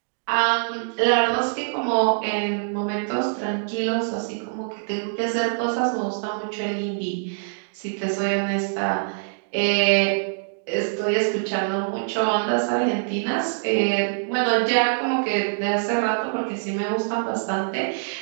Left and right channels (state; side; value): silent; left; digital silence